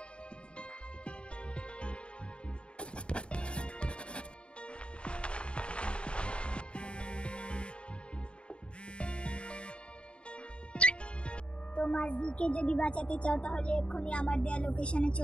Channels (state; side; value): late; right; 0.055 ms